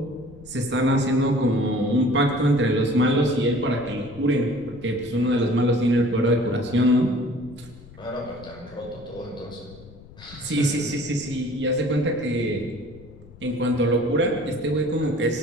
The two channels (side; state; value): left; noise; rumble, 20 dB below the sound